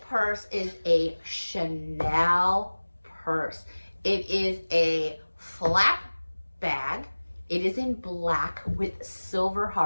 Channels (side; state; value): both; inverted; correlation -1.00